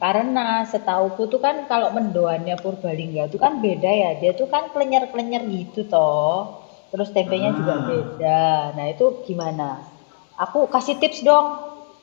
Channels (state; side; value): silent; right; digital silence